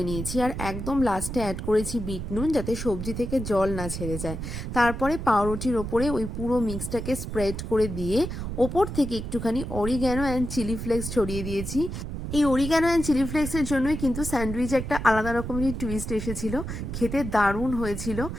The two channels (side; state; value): right; noise; rumble, 6 dB below the sound